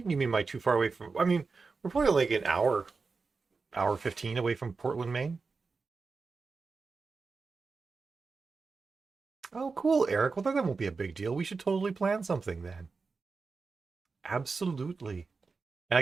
You mean by too far away from? I mean, we're probably like an hour 15 away from Portland, Maine. Oh, cool, Eric. Well, then that won't be a big deal. We should totally plan something then. Absolutely.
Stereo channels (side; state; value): left; quieter; 4.5 dB